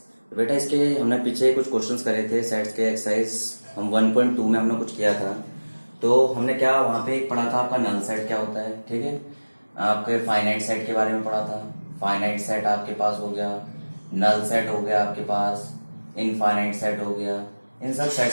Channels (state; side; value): inverted; both; correlation -1.00